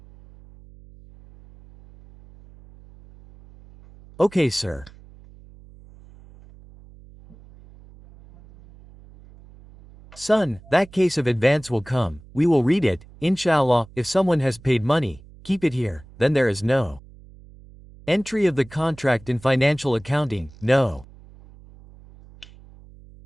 Okay sir. Son, that case of advance will come, we will read it, inshallah, if someone has paid money, keep it here, then there is no entry of the contract in financial accounting, no.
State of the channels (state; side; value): noise; right; hum, 22 dB below the sound